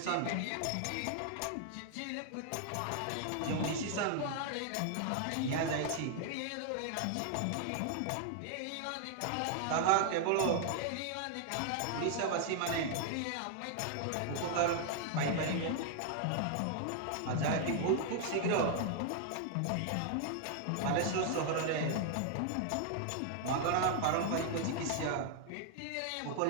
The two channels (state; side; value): different; both; correlation 0.00